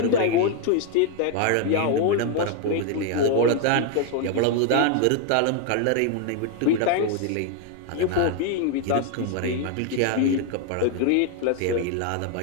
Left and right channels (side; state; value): both; different; correlation 0.01